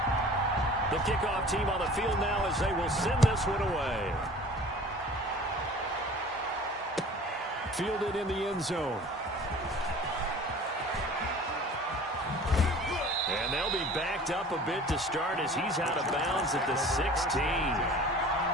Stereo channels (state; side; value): normal; both; correlation 0.45